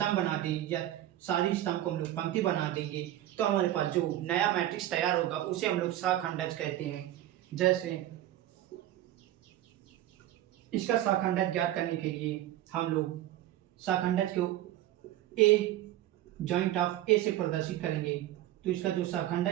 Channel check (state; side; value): quieter; left; 13.7 dB